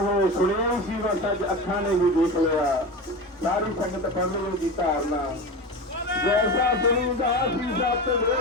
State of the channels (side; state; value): both; normal; correlation 0.26